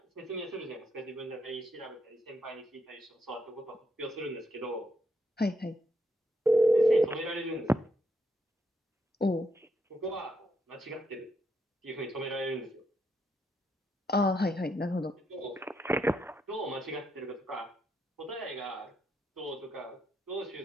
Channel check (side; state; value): both; normal; correlation 0.79